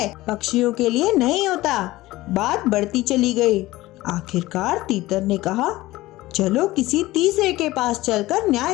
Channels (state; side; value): quieter; right; 18.0 dB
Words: पक्षियों के लिए नहीं होता। बात बढ़ती चली गई। आखिरकार तीतर ने कहा, चलो किसी तीसरे के पास चलकर न्याय